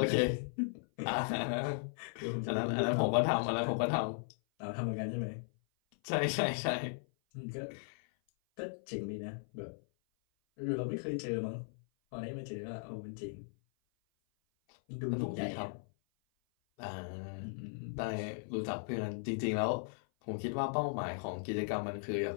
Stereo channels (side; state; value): right; silent; 53 dB below the other